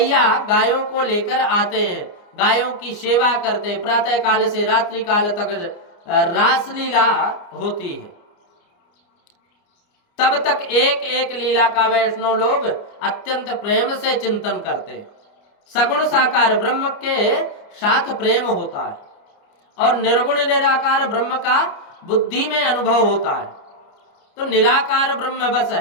गायों को लेकर आते हैं, गायों की सेवा करते हैं। प्रातः काल से रात्रि काल तक रासलीला होती है। तब तक एक एक लीला का वैष्णव लोग अत्यंत प्रेम से चिंतन करते हैं। सगुण साकार ब्रह्म के साथ प्रेम होता है और निर्गुण निराकार ब्रह्म का बुद्धि में अनुभव होता है। तो निराकार ब्रह्म बस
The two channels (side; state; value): right; late; 29 ms